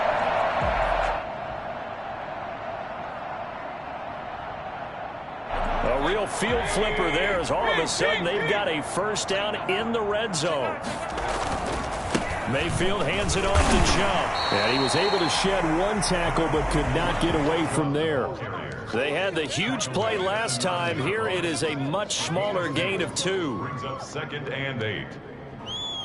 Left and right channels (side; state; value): both; identical; correlation 1.00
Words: A real field flipper there as all of a sudden they've got a first down in the red zone. Mayfield hands it off to Chubb. And he was able to shed one tackle but could not get away from there. They had the huge play last time. Here it is a much smaller gain of 2. Brings up 2nd and 8.